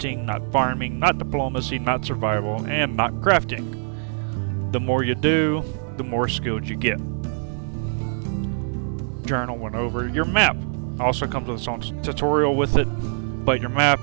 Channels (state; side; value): silent; left; 59 dB below the other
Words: not farming, not diplomacy, not survival, and not crafting. The more you do, the more skilled you get. Journal went over. Your map also comes with its own tutorial with it, but your map,